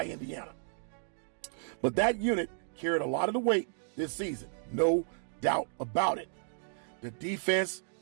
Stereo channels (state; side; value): silent; left; digital silence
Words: Indiana, but that unit carried a lot of the weight this season, no doubt about it. The defense